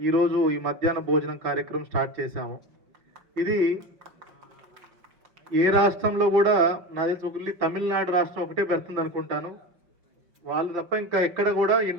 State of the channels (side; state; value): left; late; 5.6 ms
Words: ఈరోజు ఈ మధ్యాహ్న భోజనం కార్యక్రమం స్టార్ట్ చేశాము. ఇది ఏ రాష్ట్రంలో కూడా నా తెలిసి ఒకటి తమిళనాడు రాష్ట్రం ఒకటే పెడుతుంది అనుకుంటాను. వాళ్ళు తప్ప ఇంకా ఎక్కడ కూడా